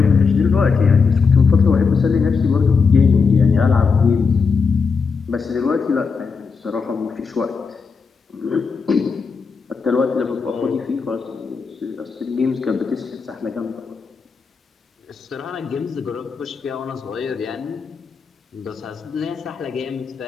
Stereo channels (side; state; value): right; quieter; 5.2 dB